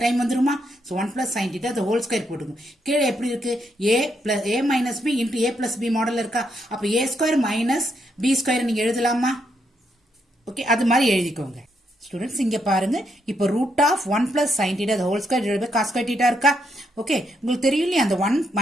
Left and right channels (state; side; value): normal; both; correlation 0.78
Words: டைம் வந்துருமா. So 1 plus sin theta the whole square போட்டுக்கோங்க. கீழே எப்படி இருக்கு, a minus b into a plus b model இருக்கா. அப்போ a square minus b square நீங்க எழுதலாமா. ஓகே, அது மாதிரி எழுதிக்கோங்க. ஸ்டூடெண்ட்ஸ் இங்க பாருங்க, இப்போ root of 1 plus sin theta the whole square divided by cos square theta இருக்கா. ஓகே, உங்களுக்கு தெரியும் இல்லையா, அந்த 1